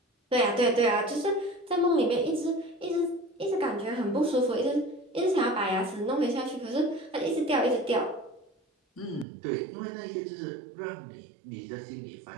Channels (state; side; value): drops out; left; at 9.2 s